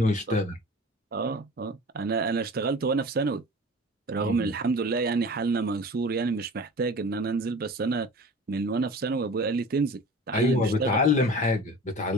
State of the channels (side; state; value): both; normal; correlation 0.39